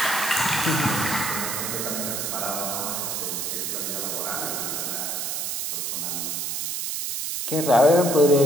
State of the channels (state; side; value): noise; right; hiss, 2 dB below the sound